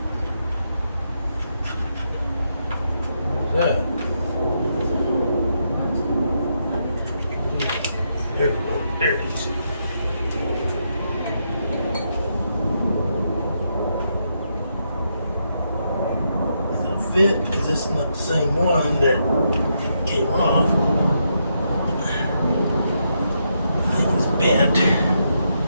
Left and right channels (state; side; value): inverted; both; correlation -0.80